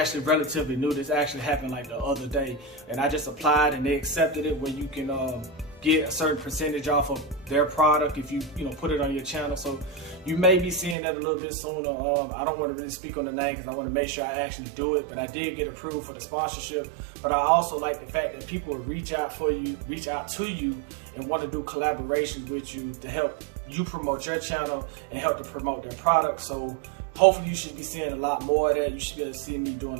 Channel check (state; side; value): drops out; left; at 11.0 s